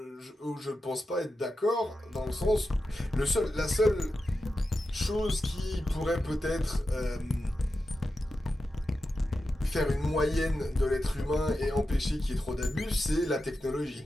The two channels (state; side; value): normal; both; correlation 0.90